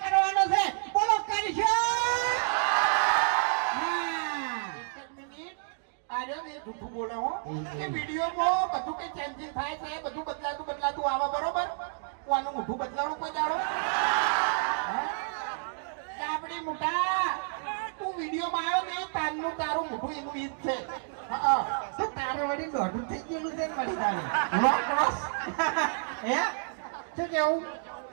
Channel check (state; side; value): silent; left; digital silence